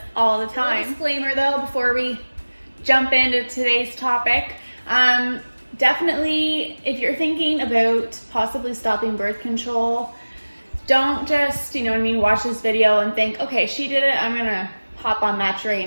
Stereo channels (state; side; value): inverted; both; correlation -1.00